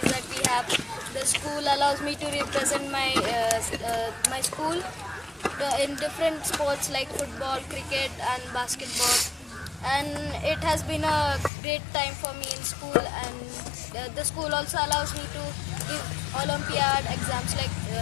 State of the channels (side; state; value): right; drops out; at 11.5 s